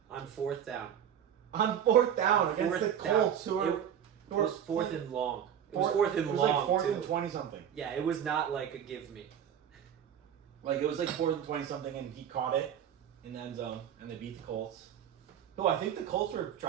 On 4th down. On 4th down against the Colts, it was 4th and long. It was 4th and long. It was like 4th and 20-something. Yeah, it was not like a give me. Like, it was like 4th and 20-something, and he caught it in the end zone, and they beat the Colts. Oh, I think the Colts were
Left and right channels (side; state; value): left; quieter; 9.2 dB